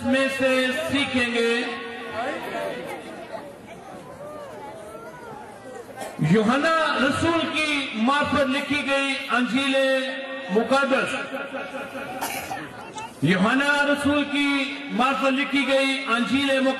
में से सीखेंगे। यूहन्ना रसूल की मार्फत लिखी गई अंजीले मुकद्दस, यूहन्ना रसूल की मार्फत लिखी गई अंजीले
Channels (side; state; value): both; identical; correlation 1.00